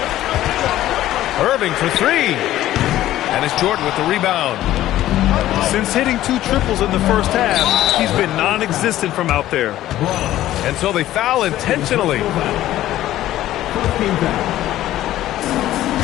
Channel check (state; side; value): quieter; right; 13.9 dB